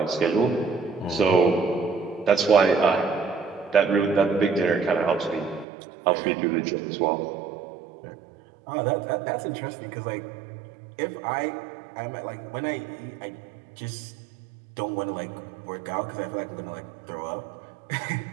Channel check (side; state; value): left; drops out; at 5.7 s